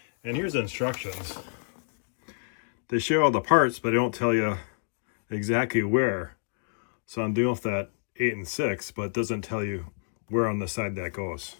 And here's the instructions. They show all the parts, but they don't tell you exactly where. So I'm doing with that 8 and 6, but it doesn't tell you where on the side that goes.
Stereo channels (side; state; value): right; silent; digital silence